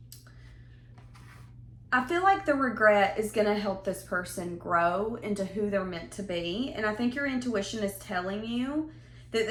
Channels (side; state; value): both; identical; correlation 1.00